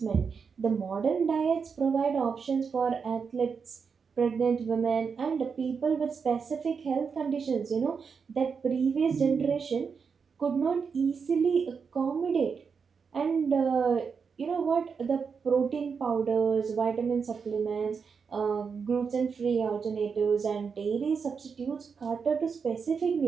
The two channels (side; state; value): left; quieter; 5.8 dB